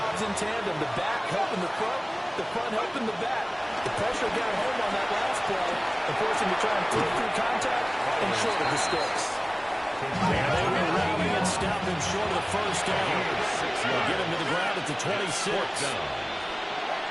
in tandem. The back helping the front helping the back. The pressure got home on that last play and forced him to try and through contact and short of the sticks. And they were rallying and stopping short of the first down. They'll get him to the ground at the 26.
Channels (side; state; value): both; identical; correlation 1.00